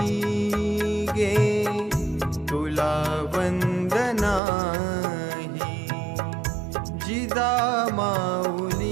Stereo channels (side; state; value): left; drops out; at 4.4 s